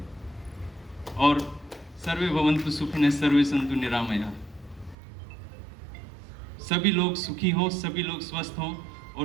और सर्वे भवन्तु सुखिनः सर्वे सन्तु निरामया, सभी लोग सुखी हों, सभी लोग स्वस्थ हों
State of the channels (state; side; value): drops out; left; at 5.0 s